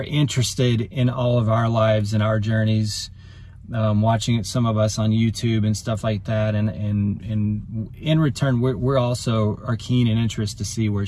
interested in all of our lives and our journeys, watching it, some of us on YouTube and stuff like that. And in return, we're also are keen and interested to see where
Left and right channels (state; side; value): identical; both; correlation 1.00